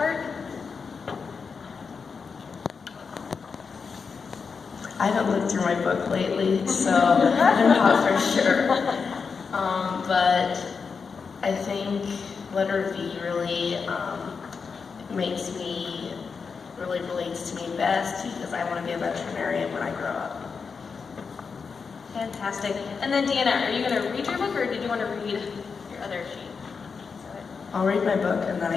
I haven't looked through my book lately, so I'm not for sure. But I think letter V really relates to me best because I want to be a veterinarian when I grow up. Fantastic. And then Deanna, are you going to read your book or did you want to read your other sheet? I'll read my book and then I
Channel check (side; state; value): right; quieter; 5.4 dB